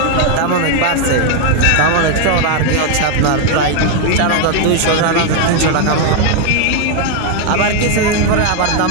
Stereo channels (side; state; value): both; different; correlation 0.01